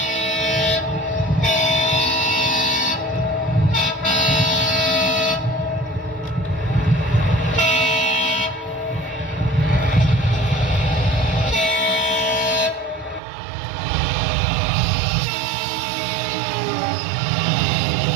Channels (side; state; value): left; drops out; at 13.2 s